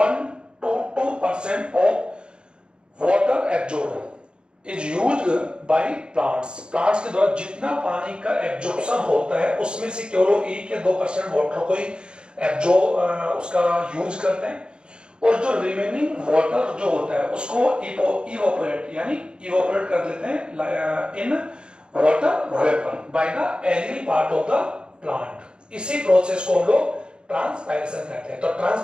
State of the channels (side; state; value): left; late; 0.052 ms